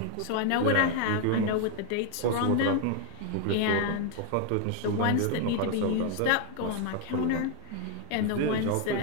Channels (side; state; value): both; different; correlation 0.00